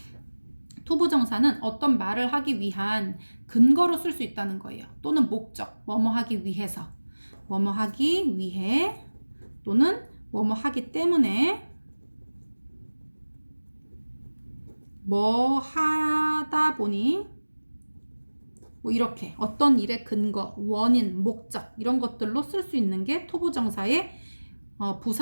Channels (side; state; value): both; inverted; correlation -1.00